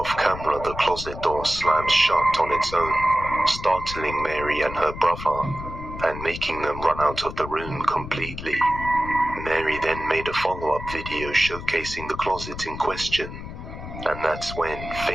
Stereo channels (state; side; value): noise; left; rumble, 10 dB below the sound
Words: camera the closet door slams shut on its own, startling Mary and her brother, and making them run out of the room completely. Mary then made a follow-up video showcasing the closet in question, and that's when